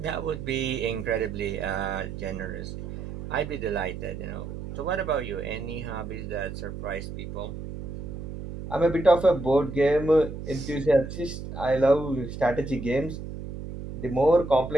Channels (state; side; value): noise; right; hum, 8 dB below the sound